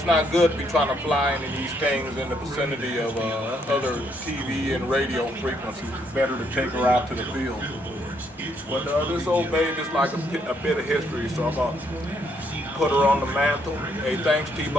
not good to be trying to fly into these things in the vicinity of other TV and radio frequencies. It's better to take her out to the field. But this old babe is like a bit of history, so I'm going to put her on the mantle. Hey, thanks,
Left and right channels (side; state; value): both; normal; correlation 0.72